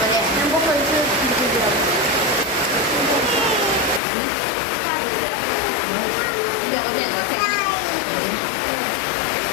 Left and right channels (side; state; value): right; drops out; at 4.0 s